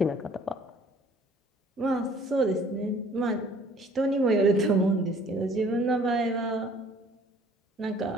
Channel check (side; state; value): both; normal; correlation 0.55